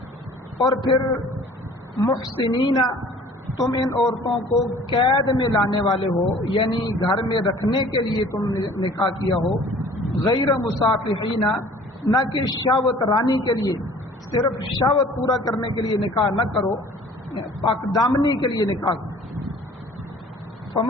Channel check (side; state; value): both; normal; correlation 0.50